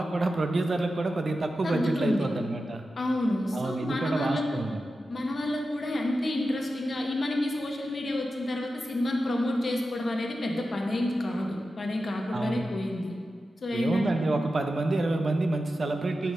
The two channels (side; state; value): both; normal; correlation 0.91